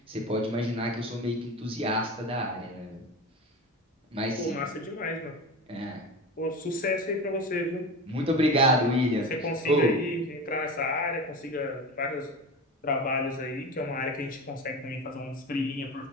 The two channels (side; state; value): both; normal; correlation 0.28